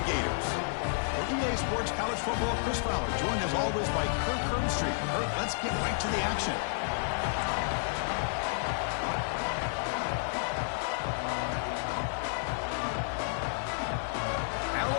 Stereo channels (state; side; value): silent; right; digital silence